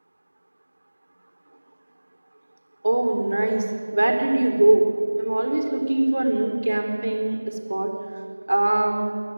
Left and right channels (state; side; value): inverted; both; correlation -1.00